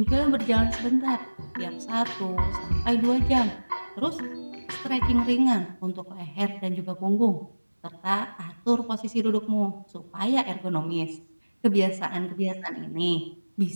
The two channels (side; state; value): both; inverted; correlation -1.00